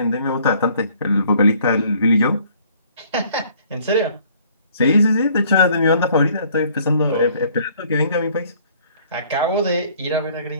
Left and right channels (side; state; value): both; inverted; correlation -0.59